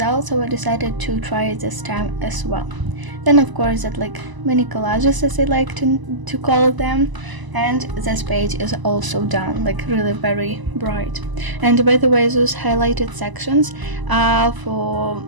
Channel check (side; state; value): left; late; 1.0 ms